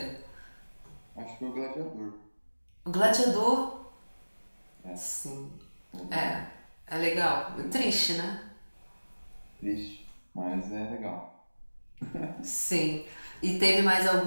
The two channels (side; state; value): both; inverted; correlation -1.00